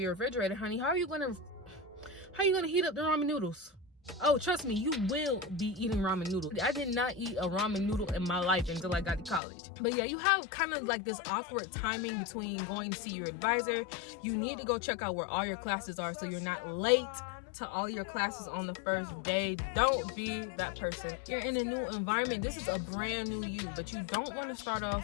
refrigerator, honey. How are you gonna heat up the ramen noodles? Oh, trust me, you will be eating ramen noodles. I did not eat a ramen noodle in my life until I got to college. But yeah, you have kind of like this awkward timing between going to see your advisor. You need to go check out where all your classes are so you're not late to all your classes on the first day. Don't be that person. You're in a new environment. This is a brand new you, but you don't want to start off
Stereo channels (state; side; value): drops out; right; at 9.4 s